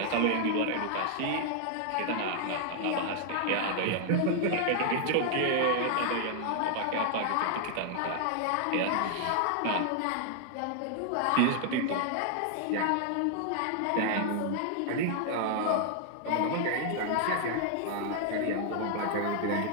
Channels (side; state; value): both; different; correlation 0.00